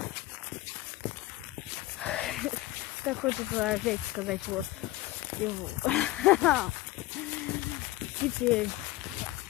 Так хочется опять сказать вот. И вот. Теперь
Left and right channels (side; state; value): right; quieter; 17.4 dB